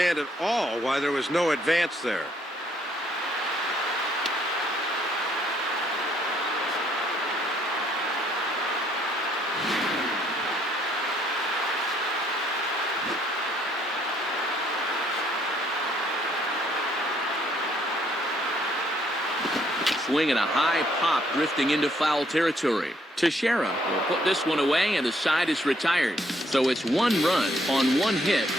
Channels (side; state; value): both; normal; correlation 0.68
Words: at all why there was no advance there. Swing and a high pop drifting into foul territory. Teixeira will put this one away, and the side is retired. So it's one run on one hit,